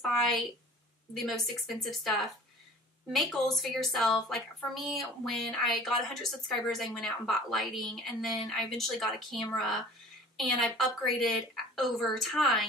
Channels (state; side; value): normal; both; correlation 0.46